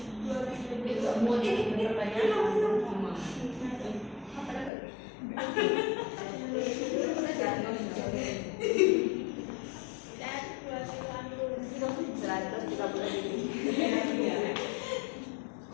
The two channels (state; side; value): drops out; right; at 4.7 s